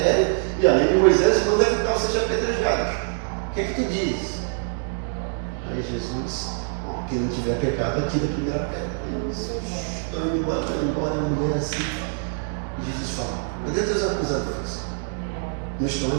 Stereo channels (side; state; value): left; silent; 56 dB below the other